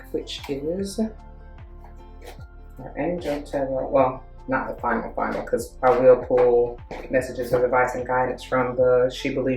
which is our Angel Tarot. Well, not the final, because I will pull messages of advice and guidance from the She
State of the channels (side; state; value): both; identical; correlation 1.00